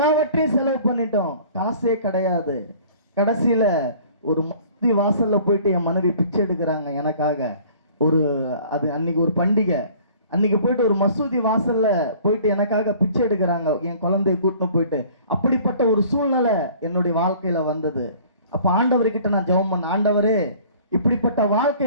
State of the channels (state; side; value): inverted; both; correlation -0.51